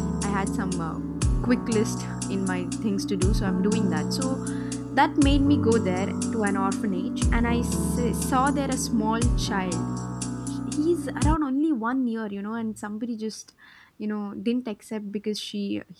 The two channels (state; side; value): identical; both; correlation 1.00